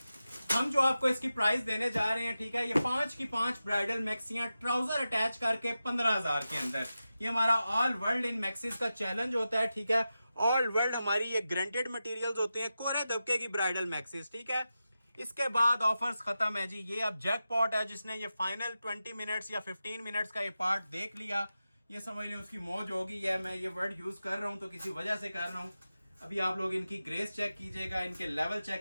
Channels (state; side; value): inverted; both; correlation -0.92